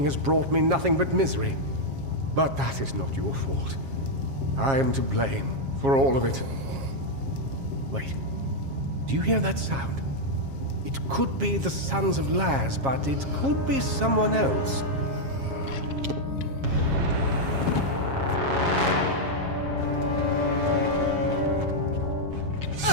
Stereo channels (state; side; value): late; left; 7.4 ms